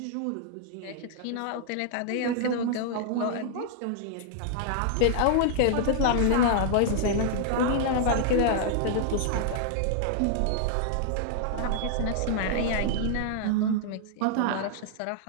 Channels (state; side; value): different; both; correlation -0.01